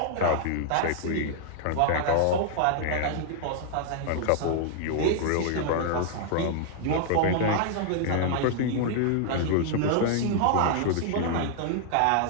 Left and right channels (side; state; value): both; different; correlation 0.00